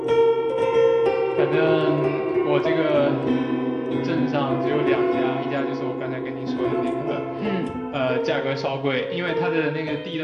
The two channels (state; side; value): identical; both; correlation 1.00